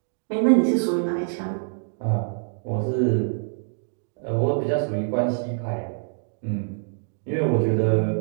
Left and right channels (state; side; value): silent; left; digital silence